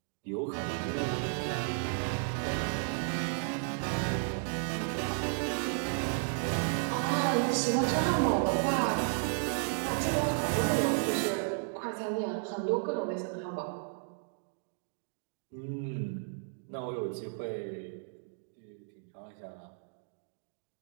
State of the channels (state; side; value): silent; left; digital silence